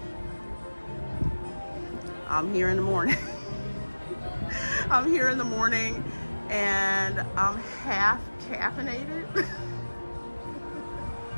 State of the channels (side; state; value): both; inverted; correlation -1.00